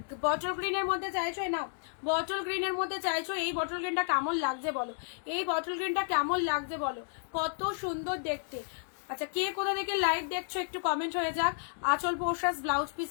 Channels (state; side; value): silent; right; digital silence